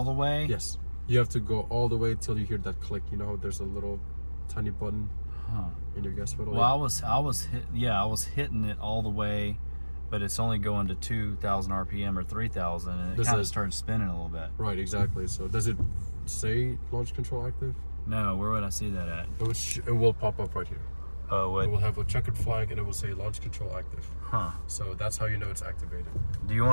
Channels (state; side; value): inverted; both; correlation -1.00